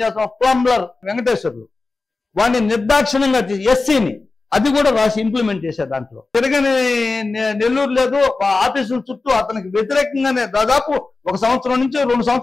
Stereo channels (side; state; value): right; quieter; 3.7 dB